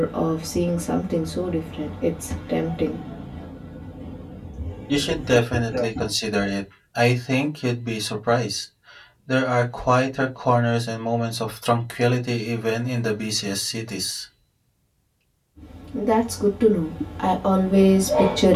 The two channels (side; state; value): both; identical; correlation 1.00